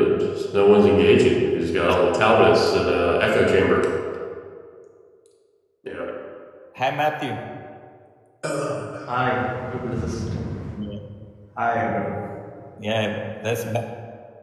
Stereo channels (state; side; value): identical; both; correlation 1.00